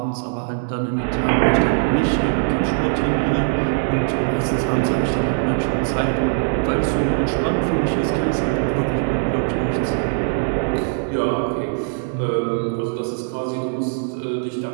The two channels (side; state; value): left; silent; digital silence